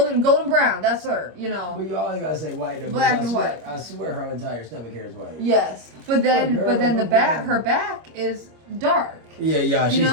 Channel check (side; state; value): left; late; 26 ms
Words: brown, that's her, you know. Well, you always gotta say white. Black and white. I swear her entire stomach hair is white. Yes. But then her back is dark. Yeah, she's